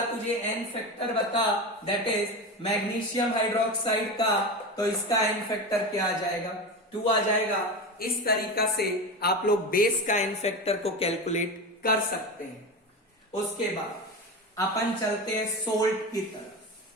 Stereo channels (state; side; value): normal; both; correlation 0.23